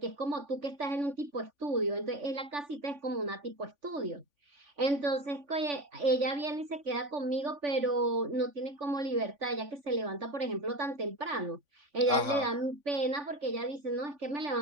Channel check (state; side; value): late; left; 3.5 ms